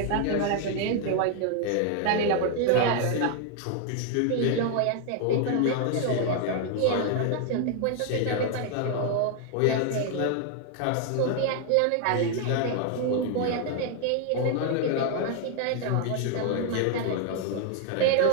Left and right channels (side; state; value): both; different; correlation 0.00